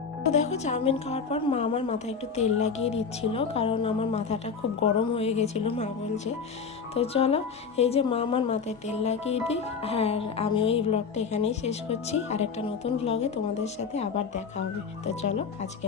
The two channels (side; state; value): right; quieter; 5.8 dB